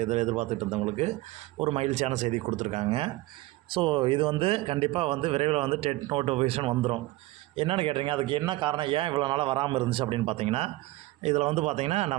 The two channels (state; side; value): quieter; left; 19.0 dB